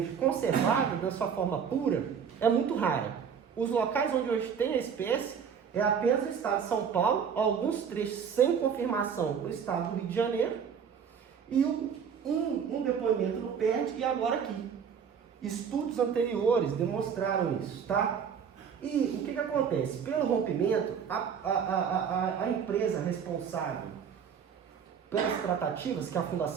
conservada, da sua forma pura, é muito rara. Os locais onde hoje tem a espécie é apenas o estado de São Paulo, alguns trechos sem confirmação no estado do Rio de Janeiro, e um depoimento no PERD e agora aqui. Estudos anteriores demonstraram isso, tá? E o que acontece? Pelo rompimento, a empresa responsável pelas tratativas, que a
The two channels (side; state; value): left; quieter; 7.2 dB